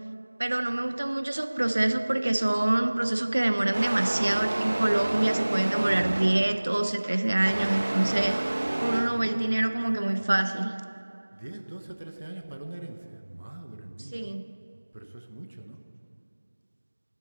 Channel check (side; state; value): both; inverted; correlation -1.00